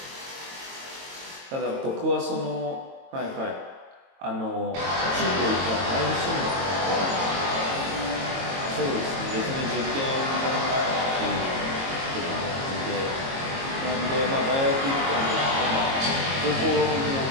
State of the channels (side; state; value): left; late; 22 ms